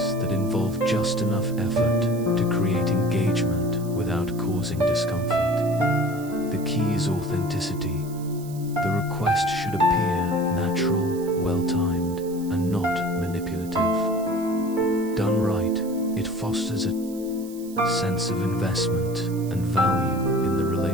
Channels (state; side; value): noise; right; hiss, 19 dB below the sound